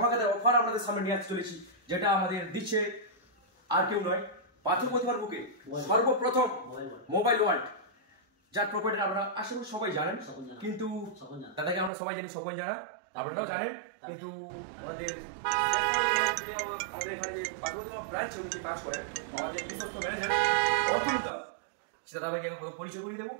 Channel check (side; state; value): left; drops out; at 11.9 s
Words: অফার আপনাদের সামনে নিয়ে আসতে চলেছি, যেটা আমাদের দিচ্ছে আর কেউ নয়, পাথর প্রতিমার বুকে সর্বপ্রথম মোবাইল ওয়ার্ল্ড, যার প্রপার্টি আপনারা আশা করি সবাই জানেন, কিন্তু দাদাকে আমরা সবাই জানি, স্বপন জানা আপনারাও জানেন, কিন্তু আমাদের এখানে যে পাথর প্রতিমা ব্রাঞ্চে উনি কাজ করেন আমাদের বিশ্বস্ত ম্যানেজার সেটা দাদাকে পরিচয় করিয়ে দেবো।